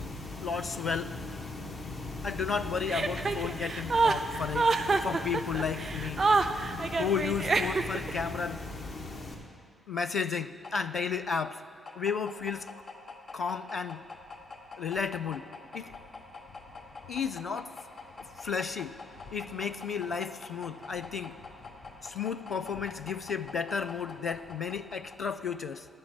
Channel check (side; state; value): both; normal; correlation 0.72